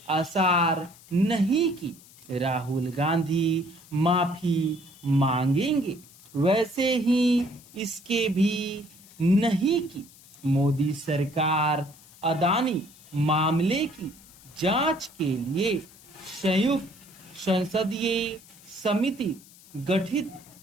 आसार नहीं कि राहुल गांधी माफी मांगेंगे, वैसे ही इसके भी नहीं कि मोदी सरकार अदानी मामले की जांच के लिए संयुक्त संसदीय समिति गठित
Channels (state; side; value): noise; left; hiss, 23 dB below the sound